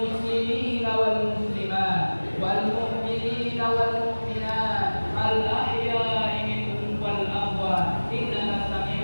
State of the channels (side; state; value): both; inverted; correlation -1.00